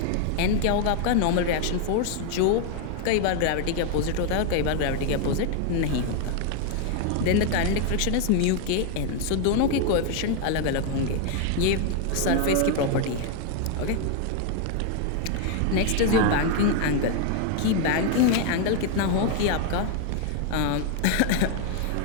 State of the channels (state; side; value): different; both; correlation 0.00